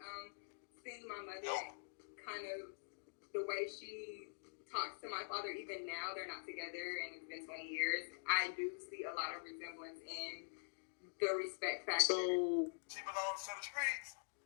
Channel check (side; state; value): right; silent; digital silence